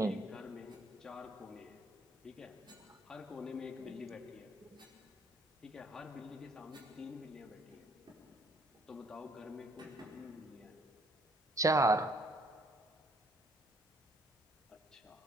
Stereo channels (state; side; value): normal; both; correlation 0.64